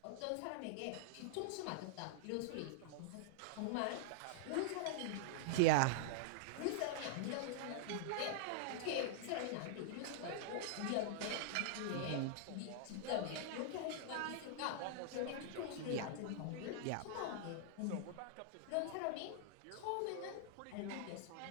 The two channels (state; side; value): different; both; correlation -0.01